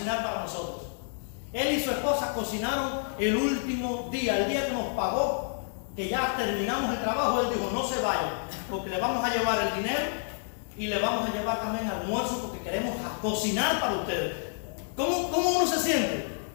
para nosotros. Él y su esposa cocinaron el último día, el día que nos pagó, que ya terminamos el trabajo. Él dijo, no se vayan, porque le vamos a llevar el dinero y le vamos a llevar también almuerzo, porque queremos cocinar para ustedes. ¿Cómo uno se siente?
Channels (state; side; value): silent; right; 58 dB below the other